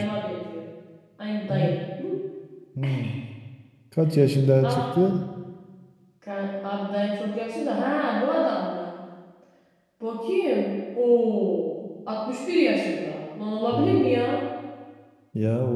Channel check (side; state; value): both; identical; correlation 1.00